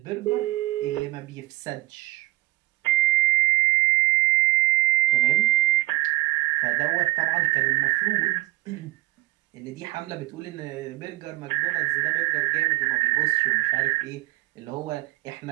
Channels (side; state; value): left; quieter; 20.4 dB